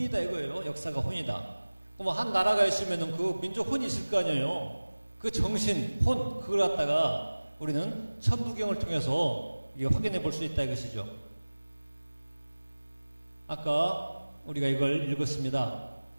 이거예요. 역사가 혼이다. 그럼 한 나라가 있으면은 그 민족 혼이 있을 거 아니에요. 그 정신, 혼 그걸 갖다가 우리는 천부경을 통해서 이게 확인해 볼 수 있다 이것이죠. 아까 우리가 이걸 읽었습니다.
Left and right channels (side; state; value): both; inverted; correlation -1.00